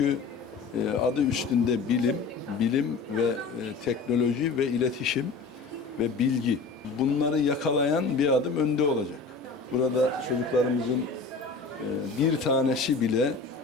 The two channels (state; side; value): quieter; right; 4.4 dB